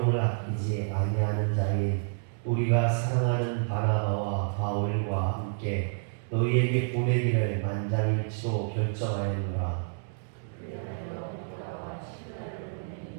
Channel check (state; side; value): silent; left; digital silence